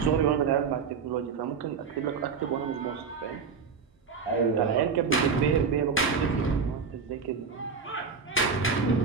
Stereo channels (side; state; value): left; quieter; 5.6 dB